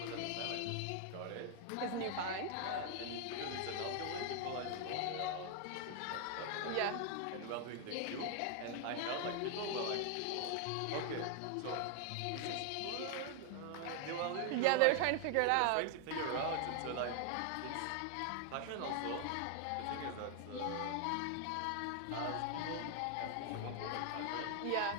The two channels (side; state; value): both; different; correlation 0.00